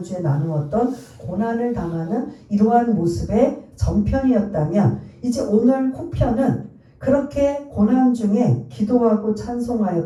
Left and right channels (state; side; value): identical; both; correlation 1.00